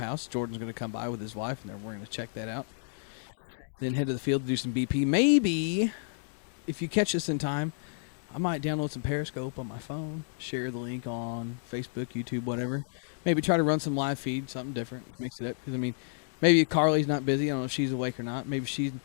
Jordan's gonna come by with his wife, and then we're gonna check that out. Then head to the field to do some BP. Maybe if you catch us in time, I might download some Periscope on my phone, share the link on Facebook, YouTube, whatever. Maybe try to run some live feed, something different, mix it up. Because I mean, maybe Carly's not busy. I don't know if she's awake or not. Maybe she's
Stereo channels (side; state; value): right; silent; digital silence